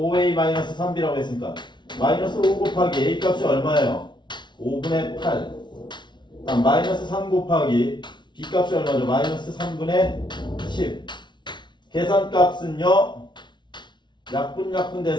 마이너스 3b라고 했으니까 마이너스 5 곱하기 a 값이 얼마예요? 5분의 8. 다음 마이너스 3 곱하기 b 값이 얼마죠? 마이너스 3분의 10. 계산값은요. 약분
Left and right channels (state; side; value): late; right; 0.22 ms